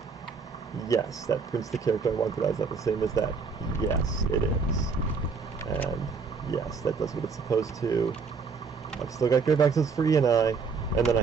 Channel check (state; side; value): quieter; left; 5.0 dB